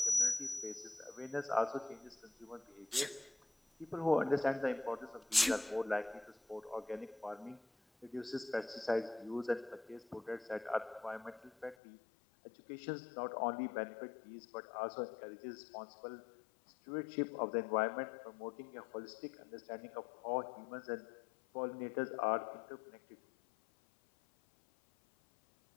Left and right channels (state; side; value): drops out; right; at 11.8 s